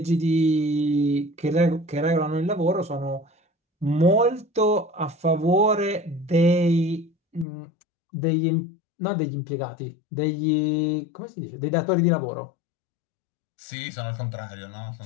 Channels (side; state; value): right; drops out; at 7.5 s